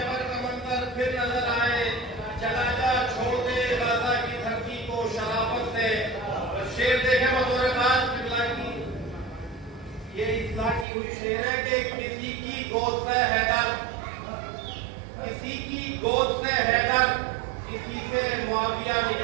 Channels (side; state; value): left; drops out; at 10.9 s